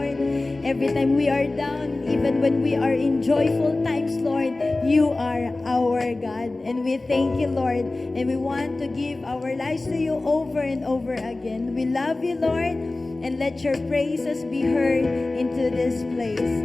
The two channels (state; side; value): quieter; right; 3.1 dB